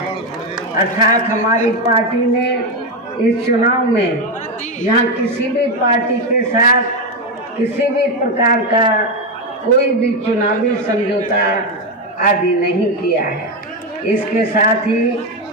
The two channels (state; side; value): normal; both; correlation 0.09